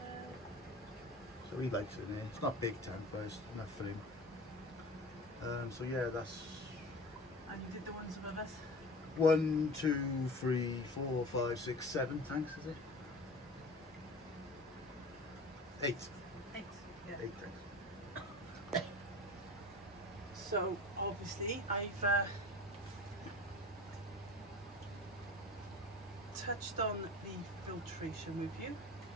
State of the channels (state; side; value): normal; both; correlation 0.36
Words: So he likes it in there. It's not a big tank, but it's enough for him. So yeah, that's. And you did the ones above us? 1, 2, 3, 4, 5, 6, 7 tanks, is it? 8. 8. Yeah. 8 tanks. So obviously I've touched on the filtration with you.